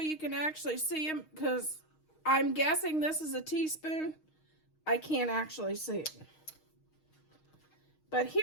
can actually see them? Because I'm guessing this is a teaspoon. I can't actually see it. But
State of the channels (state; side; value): late; right; 6.4 ms